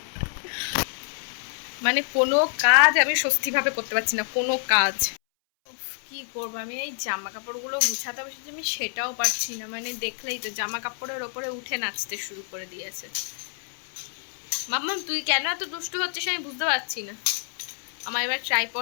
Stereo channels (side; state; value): right; silent; 60 dB below the other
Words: মানে কোনো কাজ আমি স্বস্তিভাবে করতে পারছি না, কোনো কাজ। কি করবো আমি, এই জামা কাপড়গুলো গুছাতে বসেছি আমি, সেটাও পারছি না। মানে দেখলেই তো জামা কাপড়ের ওপরে উঠে নাচতে শুরু করে দিয়েছে। মাম্মাম তুই কেন এত দুষ্টু হচ্ছিস আমি বুঝতে পারছি না। আমার এবার